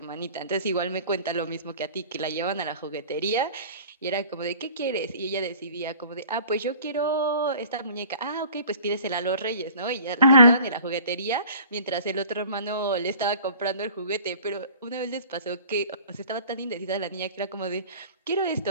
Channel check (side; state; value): both; inverted; correlation -0.47